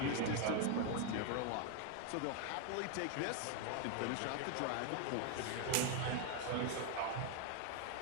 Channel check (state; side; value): different; both; correlation 0.01